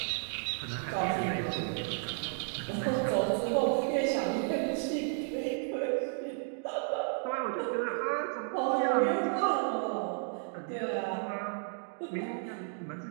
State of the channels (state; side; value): silent; left; 56 dB below the other